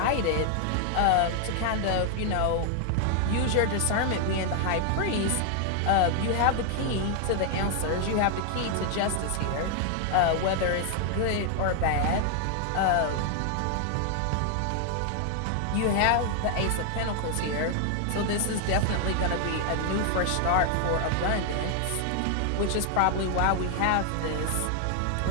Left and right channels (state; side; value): different; both; correlation 0.00